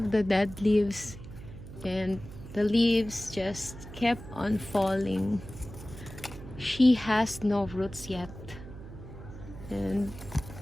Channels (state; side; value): noise; right; hum, 14 dB below the sound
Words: the dead leaves, and the leaves just kept on falling. She has no roots yet, and